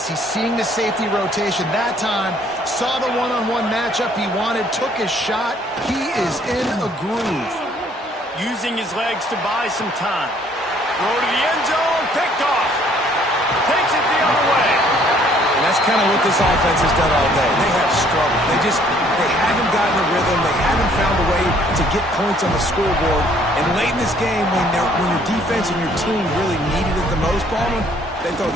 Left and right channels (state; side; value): normal; both; correlation 0.61